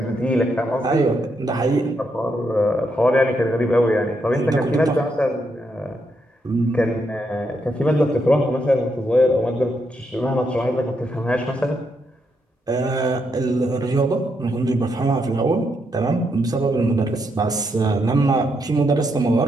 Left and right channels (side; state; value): both; normal; correlation 0.79